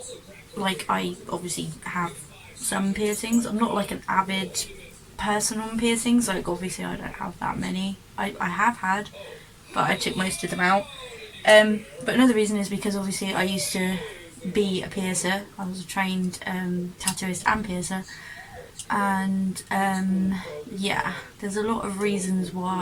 like, I obviously have some piercings. I'm not like an avid person on piercings. Like, obviously, I don't have that many. I have had, but I took most of them out. But another reason is because obviously I used to be a piercer. I was a trained tattooist and piercer, and yeah, there's a lot of reasons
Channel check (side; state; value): both; identical; correlation 1.00